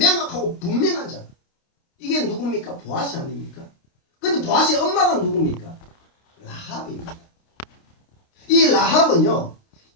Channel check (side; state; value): right; late; 29 ms